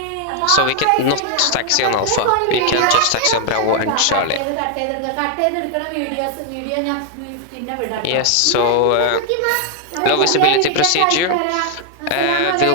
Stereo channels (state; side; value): different; both; correlation 0.00